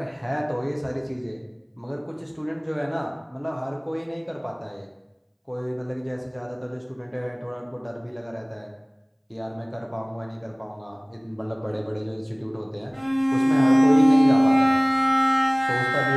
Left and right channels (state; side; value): identical; both; correlation 1.00